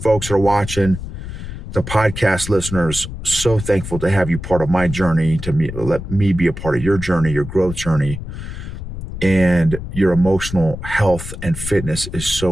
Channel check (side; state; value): left; noise; rumble, 9 dB below the sound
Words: that are watching. The podcast listeners, so thankful to have you part of my journey, let me be a part of your journey, your growth journey. And your emotional health and fitness is so